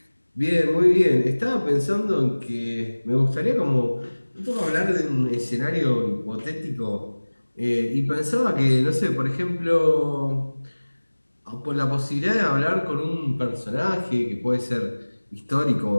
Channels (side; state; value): both; inverted; correlation -1.00